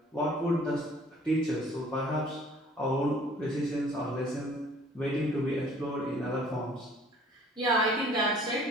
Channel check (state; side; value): normal; both; correlation 0.53